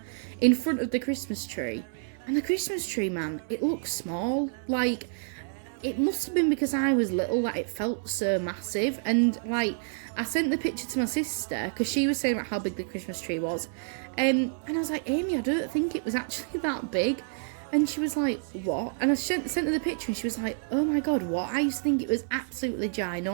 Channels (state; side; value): silent; left; 59 dB below the other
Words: in front of the Christmas tree. And the Christmas tree, man, it looks small. Like, it must have been because I was little that it felt so massive. And, like, I sent the picture to my sister because she was saying about how big the Christmas tree was. And I was like, Amy, I don't think it was actually that big. And she was like, what? And I sent her the picture and she was like, oh my God, what? I used to think it was absolutely